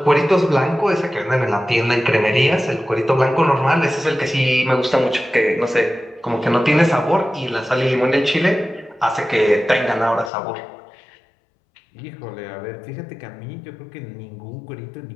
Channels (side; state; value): right; drops out; at 10.3 s